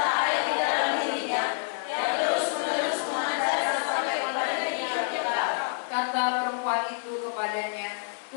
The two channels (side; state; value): right; silent; digital silence